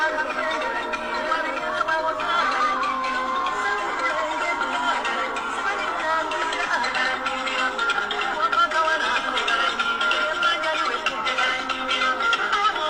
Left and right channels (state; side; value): identical; both; correlation 1.00